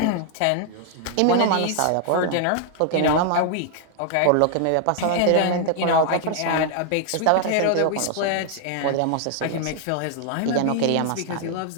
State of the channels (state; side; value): different; both; correlation 0.00